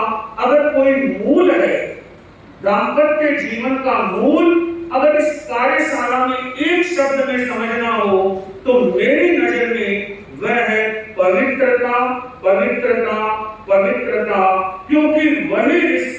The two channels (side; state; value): both; identical; correlation 1.00